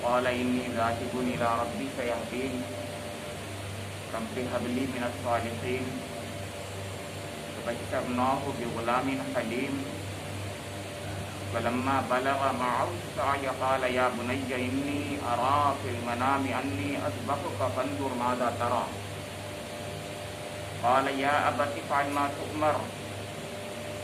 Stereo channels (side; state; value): both; identical; correlation 1.00